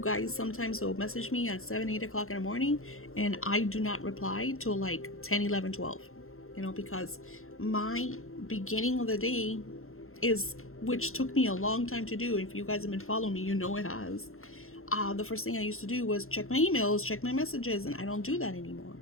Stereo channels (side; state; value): right; late; 0.62 ms